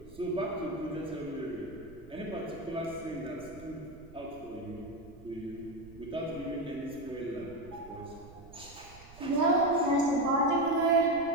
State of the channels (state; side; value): noise; right; rumble, 19 dB below the sound